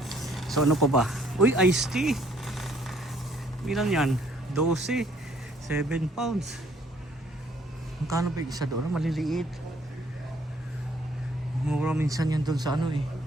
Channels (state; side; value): normal; both; correlation 0.63